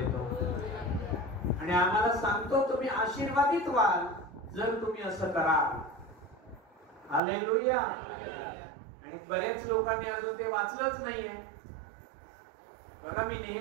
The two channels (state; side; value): drops out; left; at 7.2 s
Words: आणि आम्हाला सांगतो तुम्ही आशीर्वादित व्हाल जर तुम्ही असं कराल. हालेलुया. आणि बरेच लोकांनी अजून ते वाचलंच नाहीये. बघा, मी